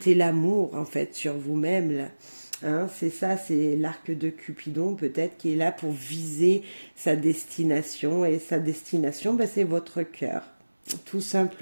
l'amour, en fait, sur vous-même, là. Hein, c'est ça, c'est l'arc de Cupidon peut-être qui est là pour viser sa destination. Et sa destination, ben, c'est votre cœur, tout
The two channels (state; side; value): inverted; both; correlation -1.00